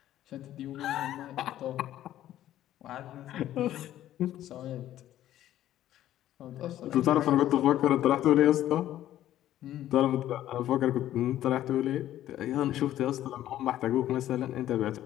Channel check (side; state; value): right; quieter; 12.8 dB